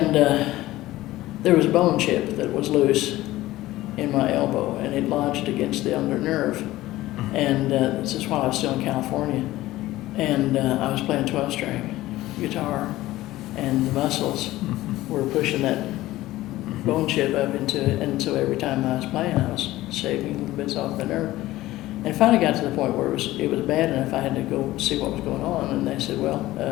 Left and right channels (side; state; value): right; quieter; 16.6 dB